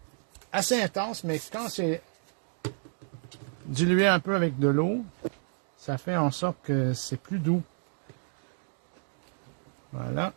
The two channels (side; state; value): left; silent; 57 dB below the other